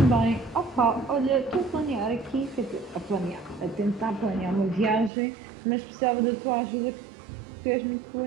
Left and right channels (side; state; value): left; drops out; at 5.1 s